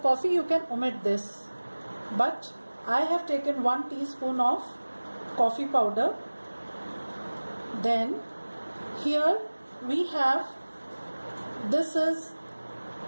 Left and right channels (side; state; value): both; inverted; correlation -1.00